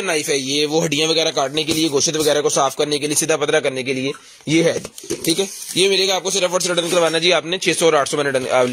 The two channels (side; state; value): both; identical; correlation 1.00